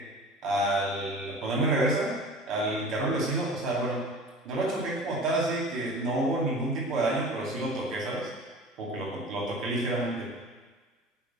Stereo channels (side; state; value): both; normal; correlation 0.40